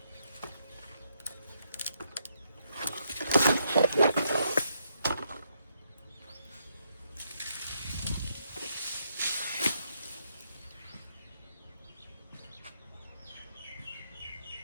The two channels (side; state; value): both; inverted; correlation -0.77